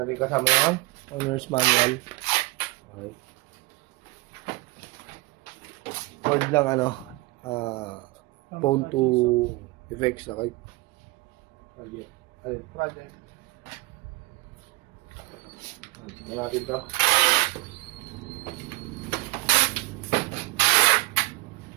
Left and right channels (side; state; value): left; quieter; 22.8 dB